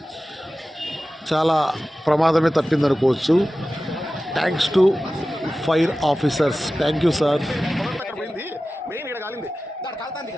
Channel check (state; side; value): normal; both; correlation 0.95